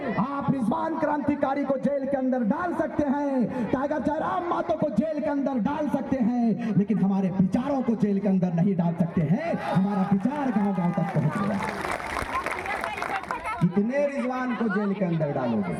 आप रिजवान क्रांतिकारी को जेल के अंदर डाल सकते हैं, टाइगर जयराम महतो को जेल के अंदर डाल सकते हैं, लेकिन हमारे विचारों को जेल के अंदर नहीं डाल सकते हैं। हमारा विचार गांव गांव तक पहुंच गया। कितने रिजवान को जेल के अंदर डालोगे?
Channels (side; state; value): both; identical; correlation 1.00